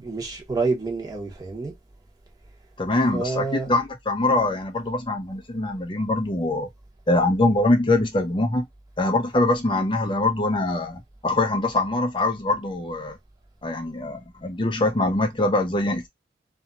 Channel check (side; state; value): both; normal; correlation 0.49